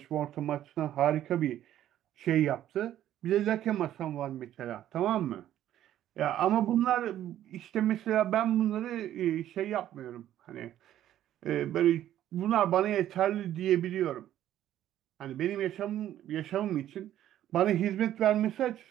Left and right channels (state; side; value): quieter; left; 12.1 dB